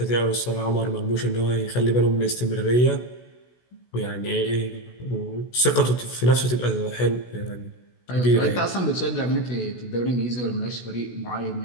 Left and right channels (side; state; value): right; late; 16 ms